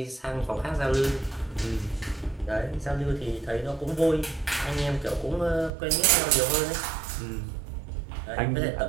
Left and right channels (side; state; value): left; drops out; at 5.7 s